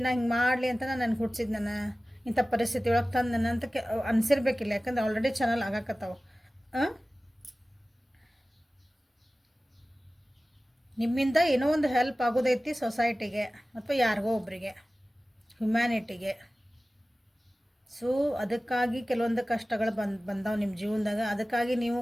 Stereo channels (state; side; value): normal; both; correlation 0.96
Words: ನಾ ಹಿಂಗೆ ಮಾಡಲಿ ಅಂತ ನನಗೆ ಹುಟ್ಟಿಸಿದ್, ನಾನು ಇಂಥ ಪರಿಸ್ಥಿತಿ ಒಳಗೆ ತಂದು ನನ್ನ ಅಂತ ಅನಿಸಿರ್ಬೇಕಿಲ್ಲ. ಯಾಕಂದ್ರೆ ಆಲ್ರೆಡಿ ಚಾನಲ್ ಆಗಾಕತ್ತಾವ. ನಿಮ್ಮಿಂದ ಏನೋ ಒಂದು ಹೆಲ್ಪ್ ಆಗೋದೈತಿ ಸೊಸೈಟಿಗೆ ಅಥವಾ ಯಾರಿಗೋ ಒಬ್ಬರಿಗೆ, ಹ್ಯುಮ್ಯಾನಿಟಿಗೆ. ಸೊ ಅದಕ್ಕಾಗಿ ಕೆಲವೊಂದು ಕಷ್ಟಗಳು ಬಂದಾವೆ ನಿಮ್ಮ ಜೀವನದಾಗ. ಅದಕ್ಕಾಗಿ ನೀವು